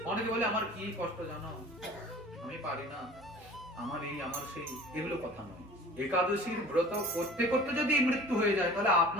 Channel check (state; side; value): normal; both; correlation 0.44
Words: অনেকে বলে আমার কি কষ্ট জানো, আমি পারি না, আমার এই আমার সেই, এগুলো কথা নয়। একাদশীর ব্রত করতে করতে যদি মৃত্যু হয়ে যায়, তাহলে